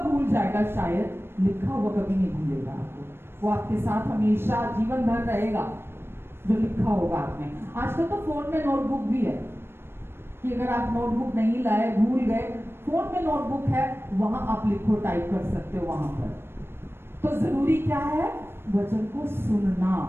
भूल जाएगा शायद, लिखा हुआ कभी नहीं भूलेगा आपको, वो आपके साथ हमेशा जीवन भर रहेगा जो लिखा होगा आपने। आजकल तो फोन में नोटबुक भी है कि अगर आप नोटबुक नहीं लाए, भूल गए, फोन में नोटबुक है, वहां आप लिखो, टाइप कर सकते हो वहां पर। तो जरूरी क्या है? वचन को सुनना,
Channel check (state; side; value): late; left; 0.12 ms